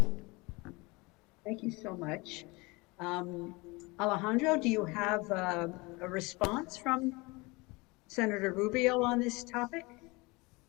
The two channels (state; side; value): quieter; right; 25.0 dB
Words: Thank you so much. Alejandro, do you have a response from Senator Rubio on this topic?